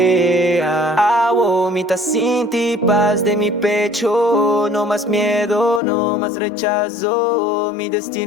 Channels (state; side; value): drops out; right; at 5.8 s